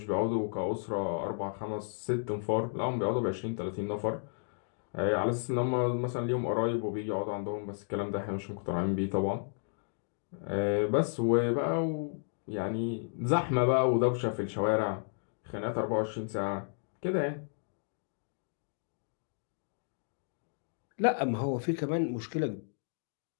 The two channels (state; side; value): silent; right; digital silence